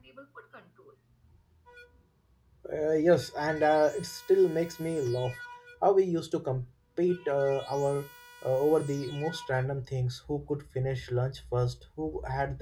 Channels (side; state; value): both; identical; correlation 1.00